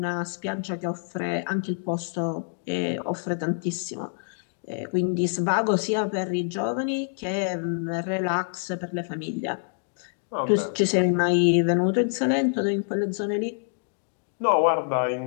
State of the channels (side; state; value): right; silent; digital silence